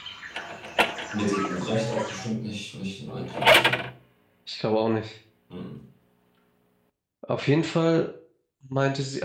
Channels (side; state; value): both; identical; correlation 1.00